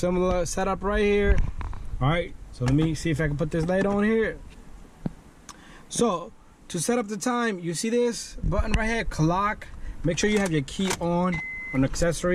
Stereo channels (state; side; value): identical; both; correlation 1.00